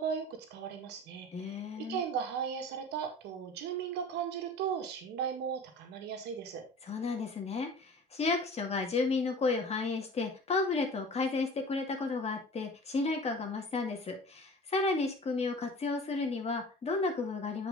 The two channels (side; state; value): both; normal; correlation 0.40